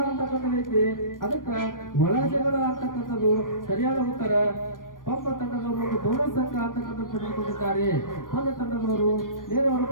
ಅಂತಕ್ಕಂಥದ್ದು ಐತಿ, ಅದಕ್ಕೆ ಒಳ ಜಗಳ ಅಂತಕ್ಕಂಥದ್ದು ಸರಿಯಾದ ಉತ್ತರ. ಒಬ್ಬ ತಂಡದವರು ಒಂದು ಬೋನಸ್ ಅಂಕ ಅಂತಕ್ಕಂಥದ್ದು ಪಡೆದುಕೊಂಡಿದ್ದಾರೆ. ಒಂದು ತಂಡದವರು ನೇರವಾದ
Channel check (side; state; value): right; late; 0.90 ms